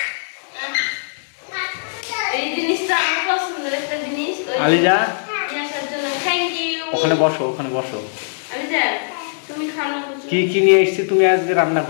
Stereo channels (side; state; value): right; silent; digital silence